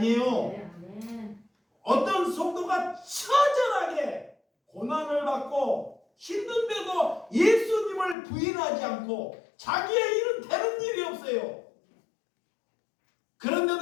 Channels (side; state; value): right; drops out; at 8.2 s